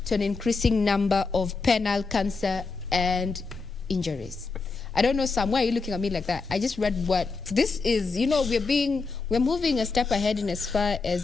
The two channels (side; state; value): right; quieter; 4.2 dB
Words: to an increasing number of penile cancer and injuries. I don't know, Sam, why are you looking at me like that? I just read what this is. We're moving a step ahead in as far